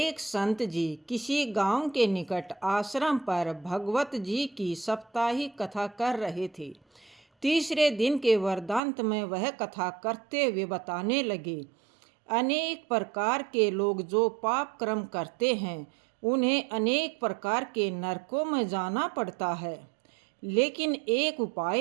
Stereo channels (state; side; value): drops out; left; at 8.8 s